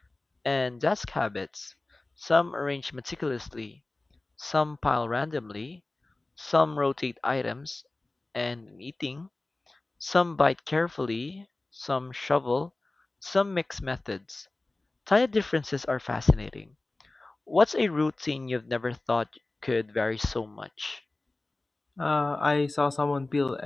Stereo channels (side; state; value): right; quieter; 3.0 dB